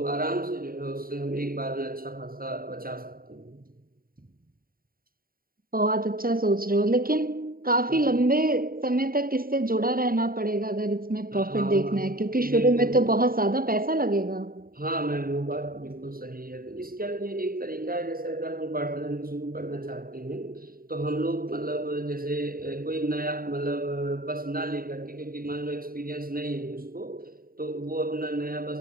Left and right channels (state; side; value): late; left; 0.42 ms